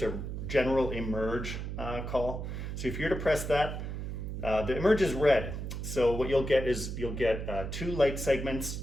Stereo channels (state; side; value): noise; right; hum, 5 dB below the sound